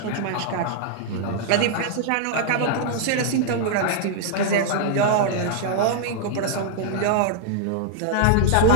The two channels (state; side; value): different; both; correlation -0.01